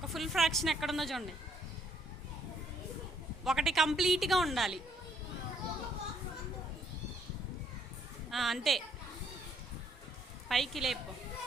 ఫుల్ ఫ్రాక్షన్ ఎక్కడుందో చూడండి. ఒకటి కంప్లీట్గా ఉండాలి. అంతే, పైకి లేపు.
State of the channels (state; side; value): normal; both; correlation 0.69